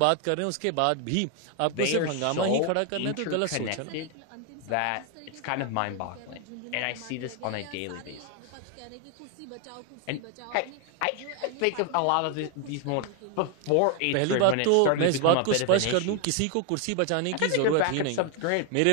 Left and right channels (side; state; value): both; different; correlation 0.01